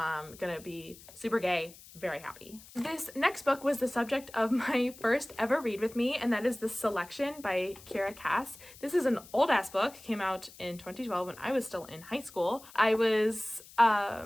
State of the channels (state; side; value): noise; left; hiss, 20 dB below the sound